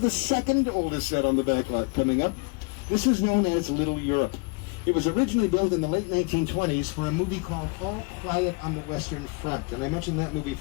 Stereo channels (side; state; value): right; quieter; 31.5 dB